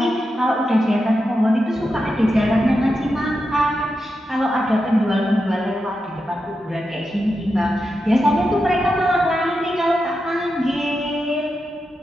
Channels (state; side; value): normal; both; correlation 0.88